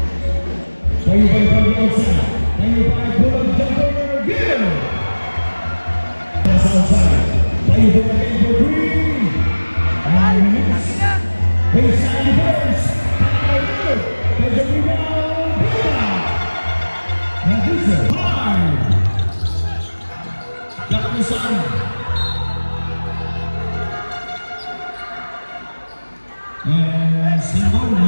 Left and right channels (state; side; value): inverted; both; correlation -1.00